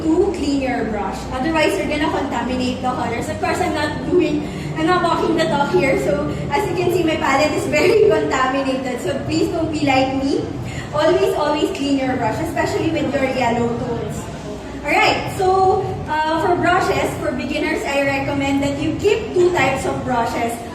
to clean your brush. Otherwise, you're gonna contaminate the colors. Of course, I'm not walking the talk here. So, as you can see, my palette is very contaminated. So, please don't be like me. Always, always clean your brush, especially with your yellow tones. Alright, so, for brushes, for beginners, I recommend that you keep two types of brushes.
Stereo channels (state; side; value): identical; both; correlation 1.00